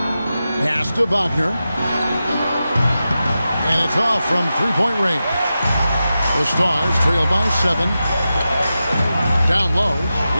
Pass to Wagner. And it's off from three-point range. The Stars trail by 7. Down low.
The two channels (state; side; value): inverted; both; correlation -0.92